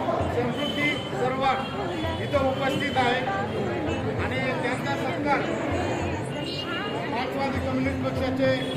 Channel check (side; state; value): both; identical; correlation 1.00